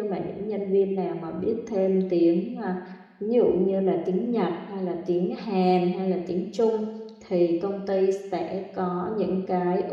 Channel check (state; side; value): identical; both; correlation 1.00